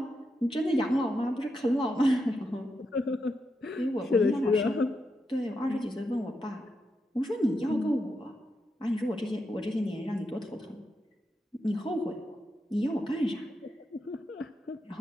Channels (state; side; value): normal; both; correlation 0.85